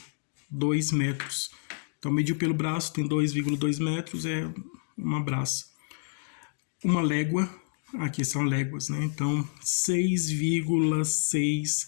metros. Então, mediu pelo braço, tem 2,2 metros, é uma braça. Uma légua, aqui são léguas, né? Então, 6,6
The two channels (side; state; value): right; silent; digital silence